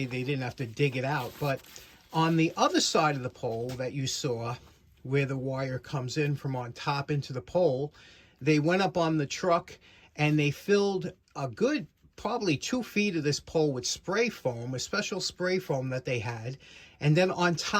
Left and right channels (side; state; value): both; identical; correlation 1.00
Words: they didn't have to dig it out. But on the other side of the pole that you saw, where the wire comes in from on top into the pole, they went up on the truck and they filled a good probably 2 feet of this pole with spray foam, a special spray foam that they had. And then on